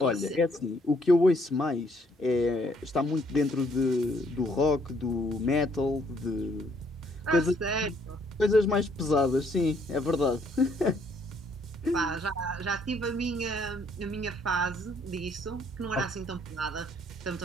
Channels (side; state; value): both; normal; correlation 0.67